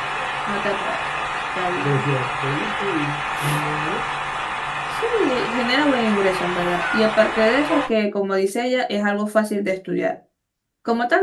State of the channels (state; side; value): identical; both; correlation 1.00